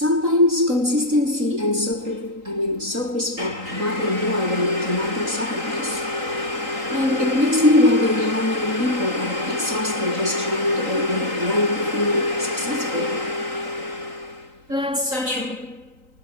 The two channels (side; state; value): left; late; 3.9 ms